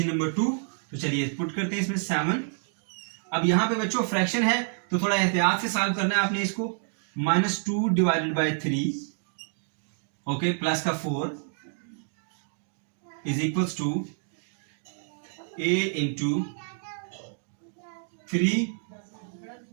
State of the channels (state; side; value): silent; left; 59 dB below the other